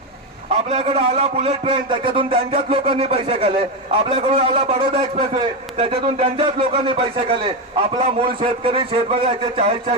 आपल्याकडे आला बुलेट ट्रेन, त्याच्यातून त्यांच्याच लोकांनी पैसे खाल्ले। आपल्याकडून आला बडोदा एक्सप्रेसवे, त्याच्यातून त्यांच्याच लोकांनी पैसे खाल्ले। आपला मूळ शेतकरी शेतकऱ्याचे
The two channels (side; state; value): both; normal; correlation 0.11